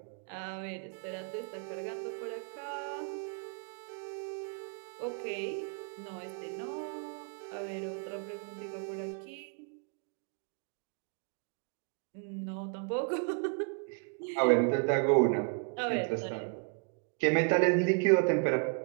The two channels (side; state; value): left; quieter; 38.8 dB